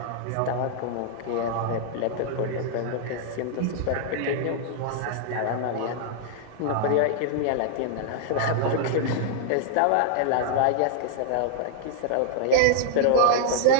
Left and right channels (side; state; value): both; different; correlation -0.01